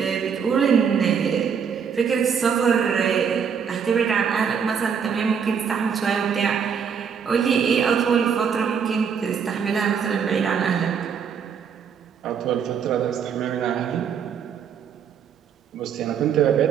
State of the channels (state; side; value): quieter; left; 7.1 dB